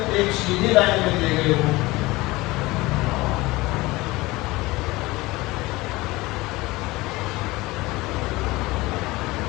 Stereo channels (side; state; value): right; quieter; 20.8 dB